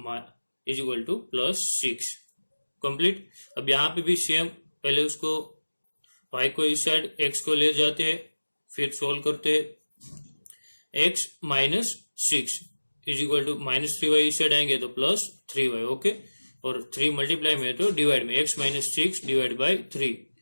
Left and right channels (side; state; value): both; inverted; correlation -1.00